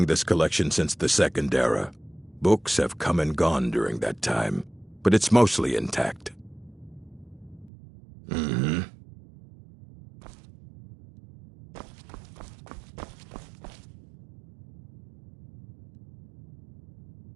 this collection since the Second Era. Books have come and gone during that time, but it's mostly intact. Mm-hmm.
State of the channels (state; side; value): drops out; left; at 7.7 s